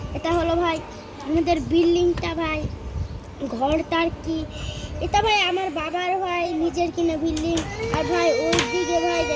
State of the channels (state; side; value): identical; both; correlation 1.00